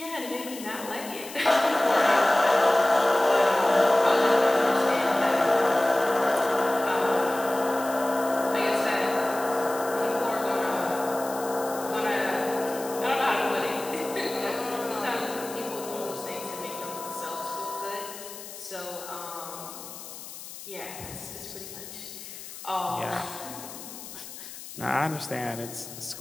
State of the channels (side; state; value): left; noise; hiss, 13 dB below the sound